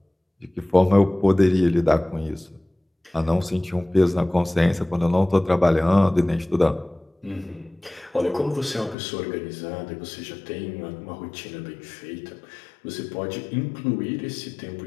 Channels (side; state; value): right; drops out; at 9.0 s